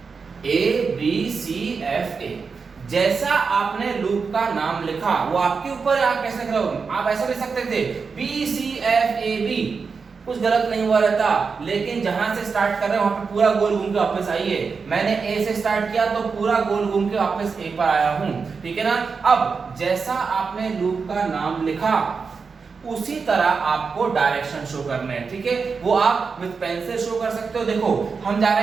A B C F A, जैसा आपने लूप का नाम लिखा वो आपके ऊपर, आप कैसे लिख रहे हो, आप ऐसा लिख सकते थे B C F A B, कुछ गलत नहीं हुआ रहता, लेकिन जहां से स्टार्ट कर रहे हैं वहां पे पूरा गोल घूम के वापस आइए। मैंने A से स्टार्ट किया तो पूरा गोल घूम के वापस A पर आया हूं, ठीक है ना। अब जैसा आपने लूप का नाम लिखा उसी तरह आपको डायरेक्शन शो करने हैं, ठीक है, वो आप विद पेंसिल शो कर सकते हो। देखो हम जा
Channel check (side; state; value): left; quieter; 5.2 dB